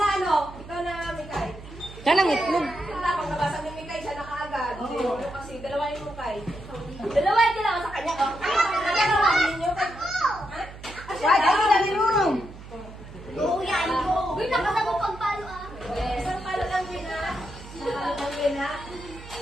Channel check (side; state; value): right; noise; hum, 15 dB below the sound